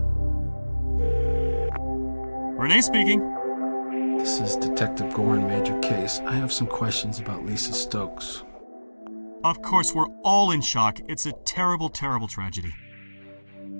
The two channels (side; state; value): both; inverted; correlation -1.00